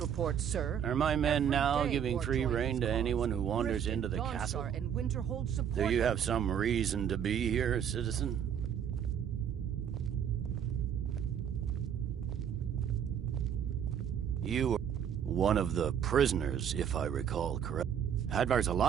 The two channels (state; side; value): quieter; left; 8.6 dB